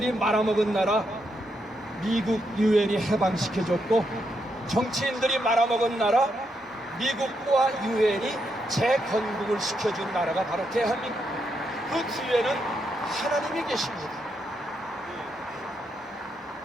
말아먹은 나라 미국 유엔이 해방시켜줬고 정치인들이 말아먹은 나라 미국과 유엔이 재건국을 시켜준 나라가 바로 대한민국. 그 뒤에는 하나님이 계십니다.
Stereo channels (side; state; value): both; normal; correlation 0.80